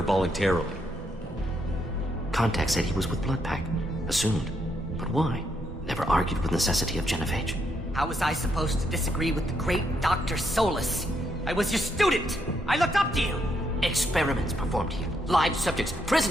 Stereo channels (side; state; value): both; normal; correlation 0.77